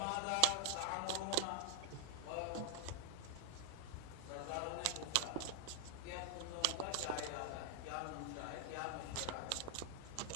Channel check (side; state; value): both; different; correlation 0.00